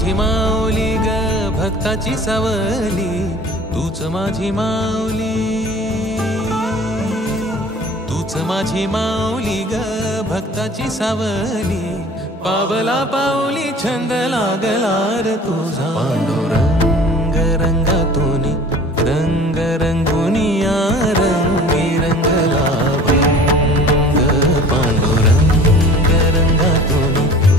माऊली ग भक्ताची सावली, तूच माझी माऊली, तूच माझी माऊली ग भक्ताची सावली। पावला पाऊली छंद लागला रे तुझा। पांडुरंग रंगातून रंग रंगुनिया रंगी रंगला भंग। पांडुरंग रंगातून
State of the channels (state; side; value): normal; both; correlation 0.45